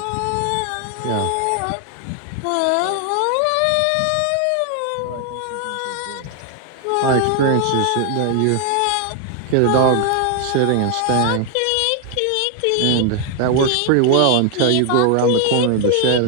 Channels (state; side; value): different; both; correlation 0.00